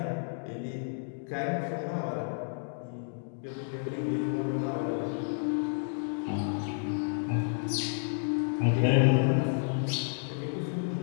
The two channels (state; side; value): silent; right; digital silence